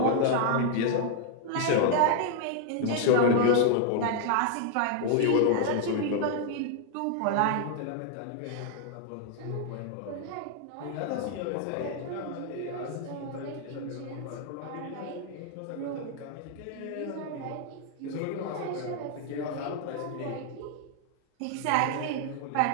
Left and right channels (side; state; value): both; different; correlation 0.00